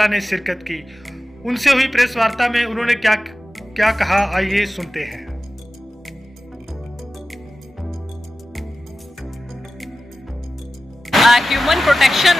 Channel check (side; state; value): both; normal; correlation 0.95